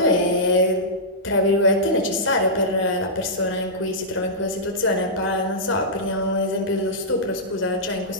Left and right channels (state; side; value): normal; both; correlation -0.14